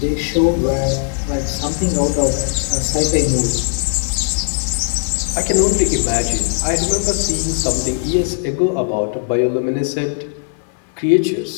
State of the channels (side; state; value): right; silent; 63 dB below the other